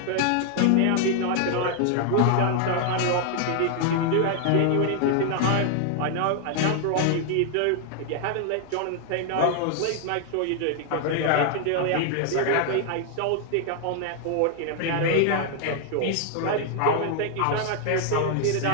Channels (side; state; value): both; different; correlation 0.00